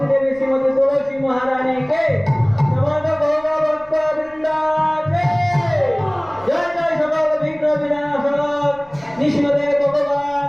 देवी श्रीमती तुलसी महारानी के समस्त गौर भक्त वृंदा के जय जय सकल विघ्न विनाशक नृसिंहदेव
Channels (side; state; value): left; noise; rumble, 27 dB below the sound